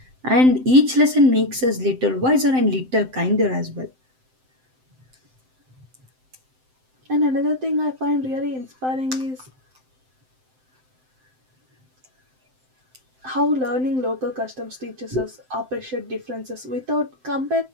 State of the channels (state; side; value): late; left; 7.7 ms